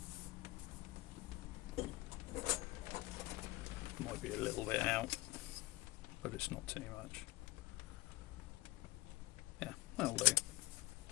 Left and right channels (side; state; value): right; quieter; 19.6 dB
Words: Might be a little bit out, but it's not too much. Yeah, that'll do.